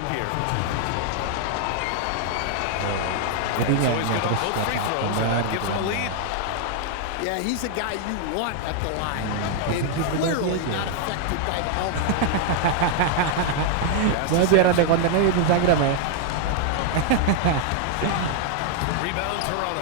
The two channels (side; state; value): both; different; correlation 0.00